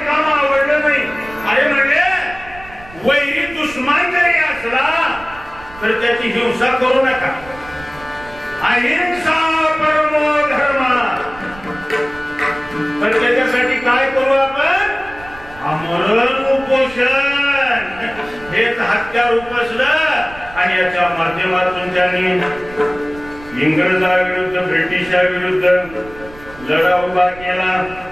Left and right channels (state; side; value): noise; right; rumble, 19 dB below the sound